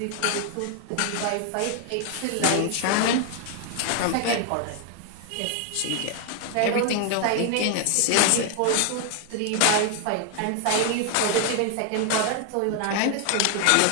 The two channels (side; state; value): both; different; correlation 0.00